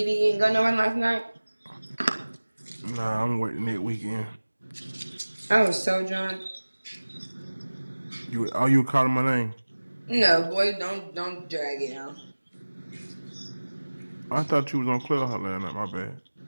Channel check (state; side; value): inverted; both; correlation -1.00